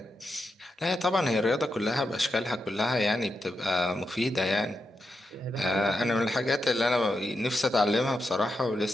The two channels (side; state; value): both; normal; correlation 0.86